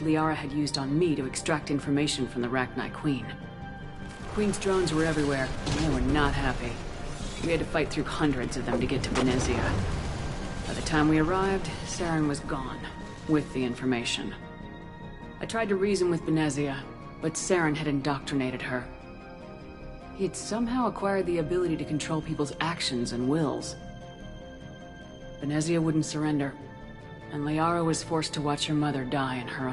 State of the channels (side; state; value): both; identical; correlation 1.00